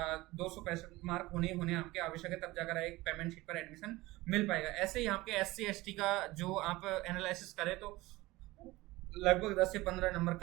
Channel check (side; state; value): left; quieter; 19.6 dB